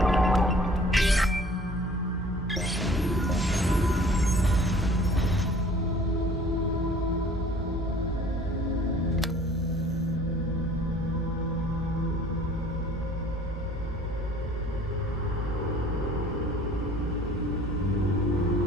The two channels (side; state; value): both; normal; correlation 0.51